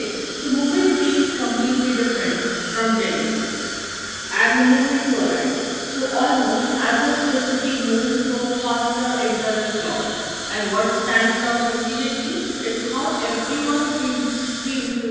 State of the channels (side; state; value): both; identical; correlation 1.00